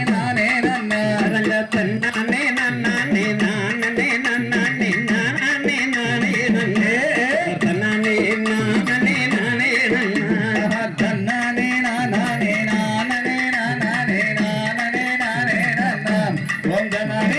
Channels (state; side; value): identical; both; correlation 1.00